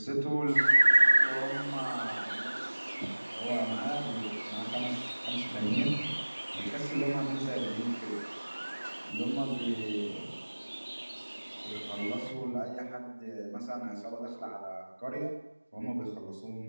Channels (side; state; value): both; inverted; correlation -1.00